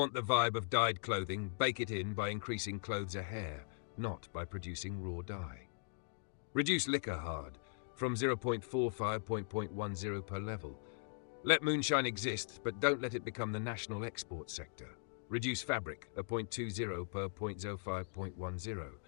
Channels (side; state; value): right; silent; digital silence